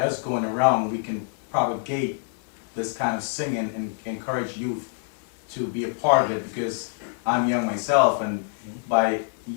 going around, we can propagate this kind of singing and encourage youth to be a part of it, because I'm young myself, and by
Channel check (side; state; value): right; silent; digital silence